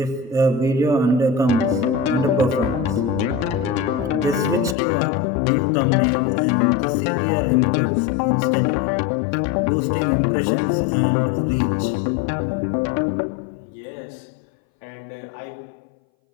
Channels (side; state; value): right; drops out; at 4.8 s